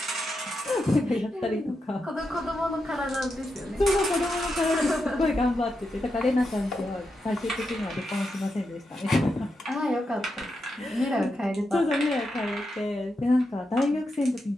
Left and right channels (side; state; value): both; normal; correlation 0.86